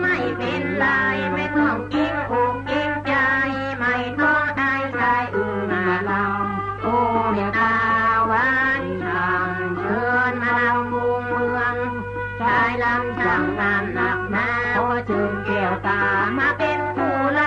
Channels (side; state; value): both; identical; correlation 1.00